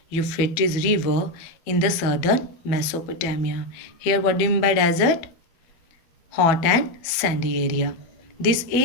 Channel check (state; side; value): late; right; 12 ms